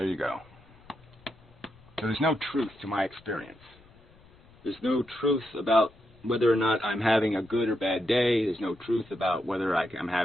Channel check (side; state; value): left; noise; rumble, 27 dB below the sound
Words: you go. So there's no truth to my experience. There's no truth about whether or not I'm having a good or bad day. There's no truth about whether I